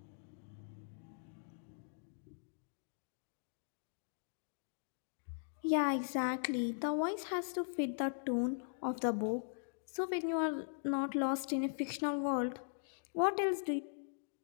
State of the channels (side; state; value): right; silent; digital silence